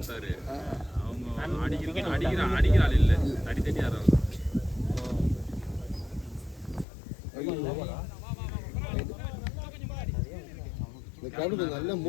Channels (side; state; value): right; drops out; at 6.9 s